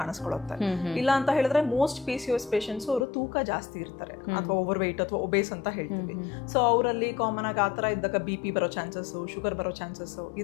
ಇಲ್ಲ ಅಂತ ಹೇಳಿದ್ರೆ ಮೋಸ್ಟ್ PCOS ಪೇಷಂಟ್ಸ್ ಅವರು ತೂಕ ಜಾಸ್ತಿ ಇರ್ತಾರೆ ಅಥವಾ ಓವರ್ ವೆಯ್ಟ್ ಅಥವಾ ಒಬೇಸ್ ಅಂತ ಹೇಳ್ತೀವಿ. ಸೊ ಅವರಲ್ಲಿ ಕಾಮನ್ ಆಗಿ ಆತರ ಇದ್ದಾಗ BP ಬರೋ ಚಾನ್ಸಸ್, ಶುಗರ್ ಬರೋ ಚಾನ್ಸಸ್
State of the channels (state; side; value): drops out; right; at 3.1 s